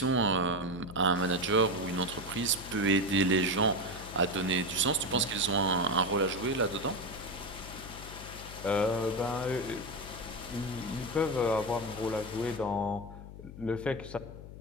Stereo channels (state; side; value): noise; left; hum, 13 dB below the sound